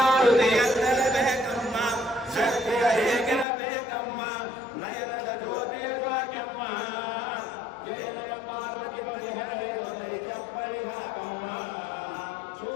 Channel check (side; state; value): right; drops out; at 3.5 s